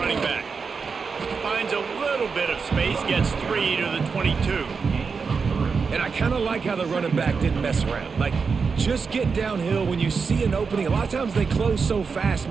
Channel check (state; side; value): quieter; left; 5.3 dB